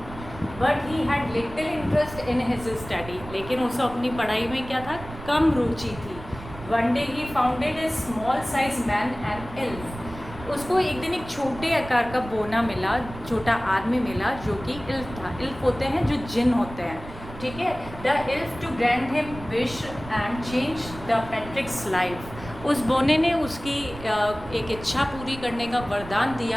But he had little interest in his study, लेकिन उसे अपनी पढ़ाई में क्या था? कम रुचि थी। One day he founded A small size man and elf. उसको एक दिन एक छोटे आकार का बोना मिला, छोटा आदमी मिला, जो कि इल्फ था। इल्फ होते हैं जो जिन होते हैं, ठीक है। The elf to grant him wish and change the Patrick's life. उस बोने ने उसकी एक इच्छा पूरी करने का वरदान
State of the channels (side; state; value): right; noise; rumble, 14 dB below the sound